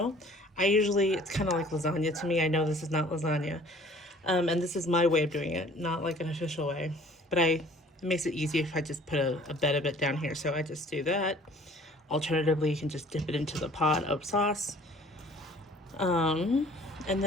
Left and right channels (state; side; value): normal; both; correlation 0.52